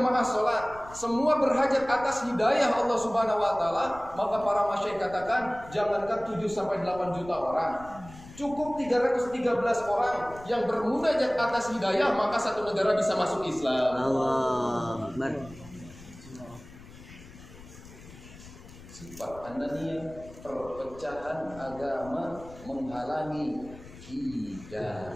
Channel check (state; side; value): noise; left; rumble, 18 dB below the sound